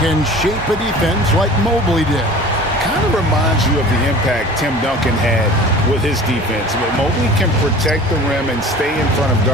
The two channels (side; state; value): both; normal; correlation 0.42